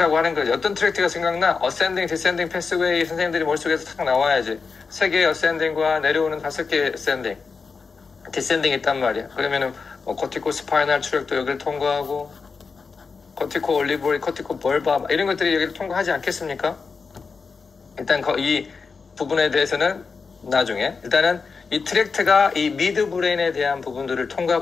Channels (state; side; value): quieter; right; 5.0 dB